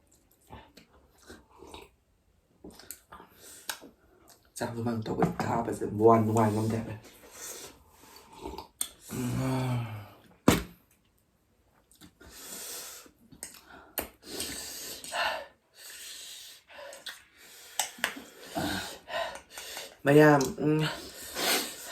Sao bên bằng tàu bệnh ta bây giờ buồn ngoài nông đẹp này Maya,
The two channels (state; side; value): identical; both; correlation 1.00